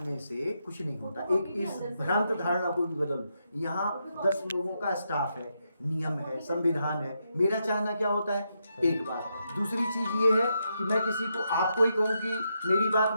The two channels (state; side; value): inverted; both; correlation -0.82